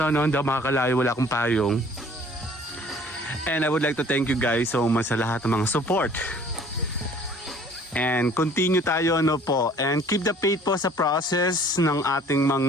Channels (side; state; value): both; normal; correlation 0.53